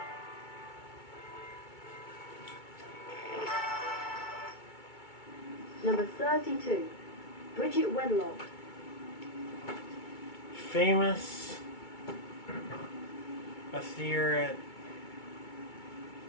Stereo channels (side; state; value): right; late; 2.2 ms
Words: Number 32. Bridget Wenlock. Famous Ethereal.